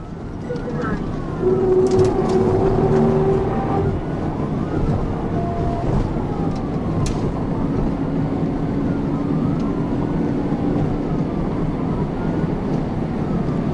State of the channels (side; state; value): both; identical; correlation 1.00